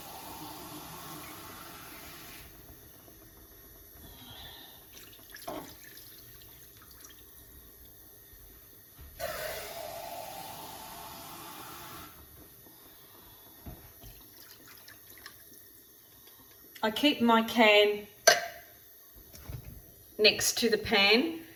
I keep my can next to the pan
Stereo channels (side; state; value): both; identical; correlation 1.00